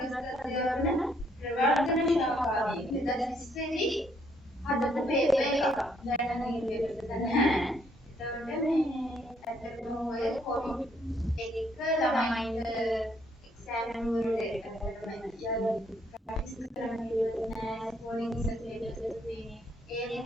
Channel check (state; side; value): normal; both; correlation 0.70